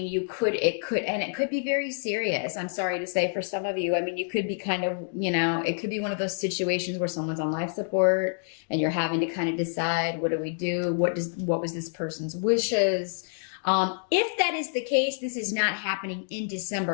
could be very serious. I'm sorry to say for some of you, you could be kind of, it could be one of those situations where someone's on life support and you're having to kind of decide, what do we do? What was this person's wishes? If that is the case, this is not happening in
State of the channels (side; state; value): right; silent; digital silence